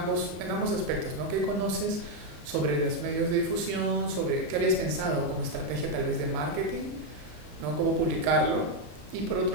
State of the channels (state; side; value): late; left; 34 ms